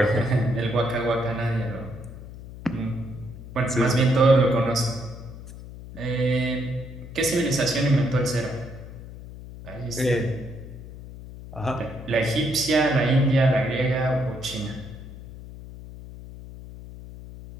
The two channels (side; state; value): left; noise; hum, 14 dB below the sound